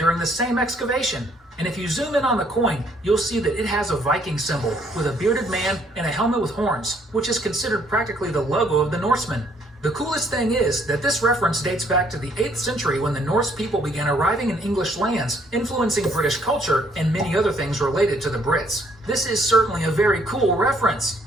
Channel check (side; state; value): both; normal; correlation 0.66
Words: the same excavation. And if you zoom in on the coin, you'll see that it has a Viking symbol with a bearded man and a helmet with horns, which is considered practically the logo of the Norsemen. The coolest thing is that this reference dates back to the 8th century when the Norse people began arriving in English lands, influencing British culture and many other things related to the Brits. This is certainly a very cool reference.